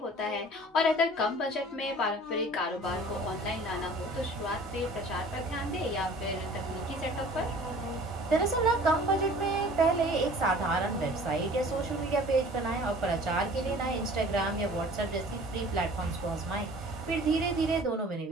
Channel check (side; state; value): both; normal; correlation 0.47